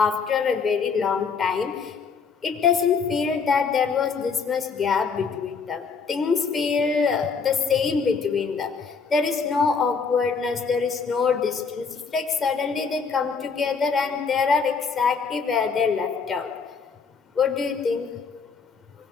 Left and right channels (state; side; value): quieter; right; 5.4 dB